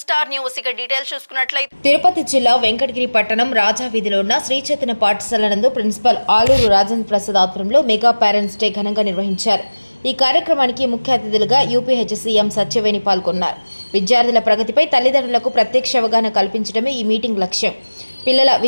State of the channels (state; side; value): inverted; both; correlation -1.00